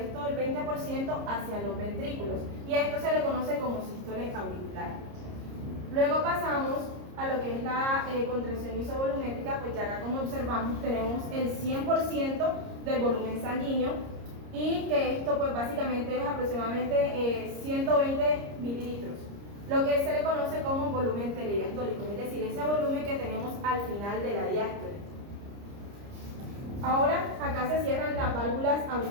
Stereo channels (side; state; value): left; late; 30 ms